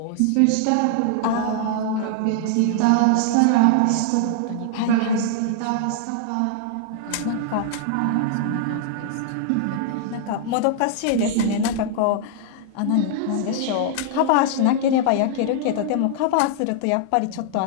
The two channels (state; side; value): different; both; correlation -0.01